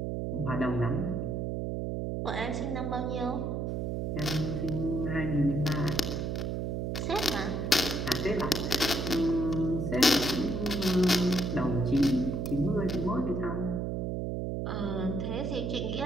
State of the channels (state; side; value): noise; right; hum, 1 dB below the sound